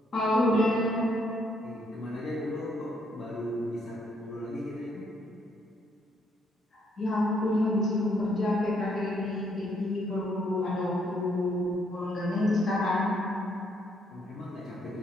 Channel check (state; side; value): normal; both; correlation 0.71